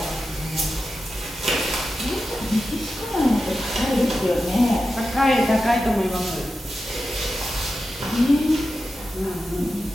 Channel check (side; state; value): both; normal; correlation 0.91